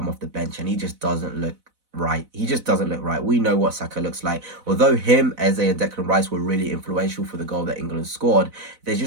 off the bench, and he just doesn't look right. He just doesn't look right. We know what Saka looks like. Although him, Eze, and Declan Rice were really influential for the goal that England scored, there's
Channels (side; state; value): left; late; 4.0 ms